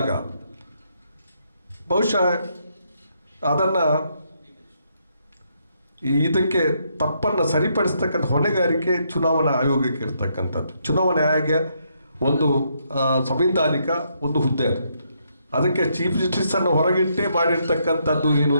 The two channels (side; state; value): both; inverted; correlation -0.76